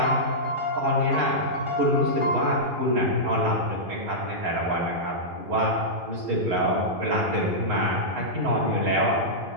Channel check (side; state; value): left; late; 11 ms